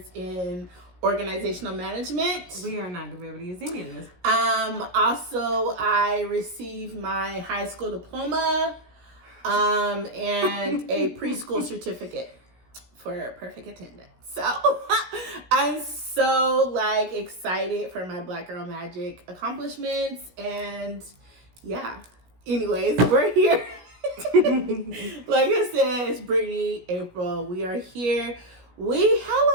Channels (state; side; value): late; left; 17 ms